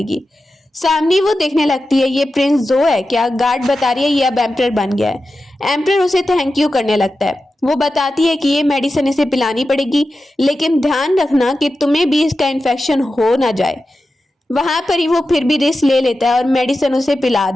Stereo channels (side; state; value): both; normal; correlation 0.92